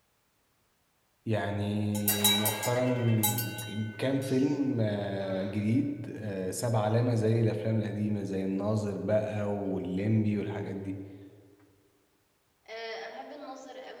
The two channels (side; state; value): both; identical; correlation 1.00